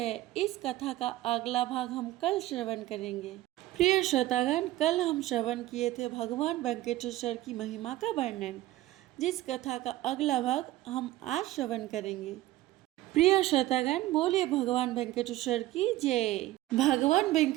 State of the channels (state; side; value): quieter; left; 16.1 dB